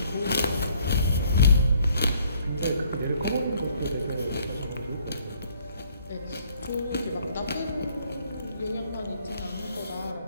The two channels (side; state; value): both; inverted; correlation -0.62